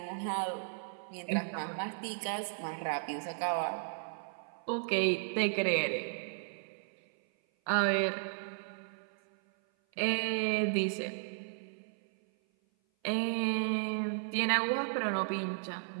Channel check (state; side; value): silent; left; 55 dB below the other